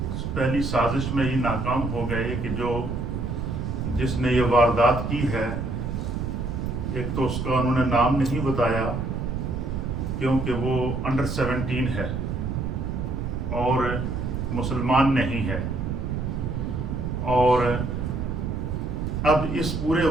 پہلی سازش میں ہی ناکام ہو گئے، کہ جس نے یہ واردات کی ہے، ایک تو اس کا انہوں نے نام نہیں بتایا کیونکہ وہ انڈر 17 ہے اور مسلمان نہیں ہے، اور اب اس پورے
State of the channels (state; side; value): noise; right; rumble, 2 dB below the sound